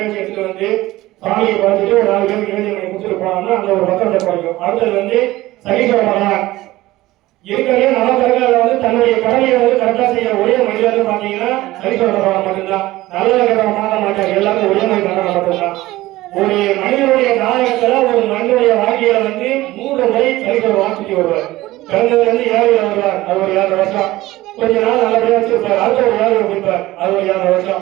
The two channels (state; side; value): quieter; left; 17.5 dB